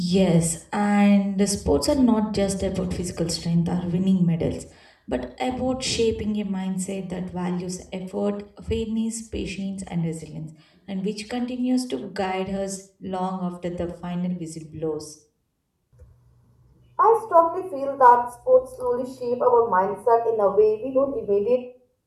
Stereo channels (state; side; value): identical; both; correlation 1.00